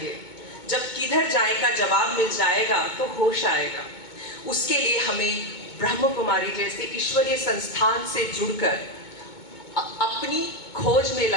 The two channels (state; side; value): late; right; 2.2 ms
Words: जब किधर जाए का जवाब मिल जाएगा तो होश आएगा। उसके लिए हमें ब्रह्म कुमारी जैसे ईश्वरीय संस्थान से जुड़कर अपनी खोज में